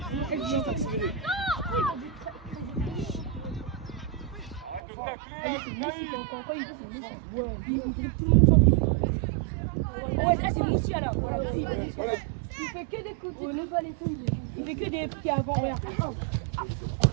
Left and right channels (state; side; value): drops out; left; at 4.8 s